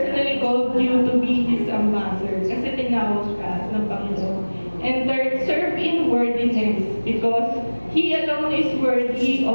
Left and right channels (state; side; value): inverted; both; correlation -1.00